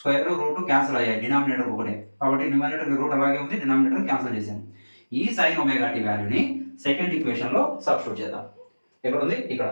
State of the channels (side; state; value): both; inverted; correlation -1.00